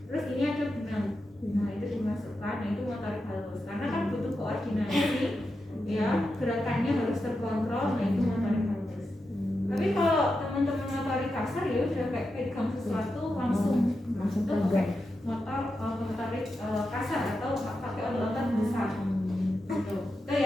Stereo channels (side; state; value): both; normal; correlation 0.88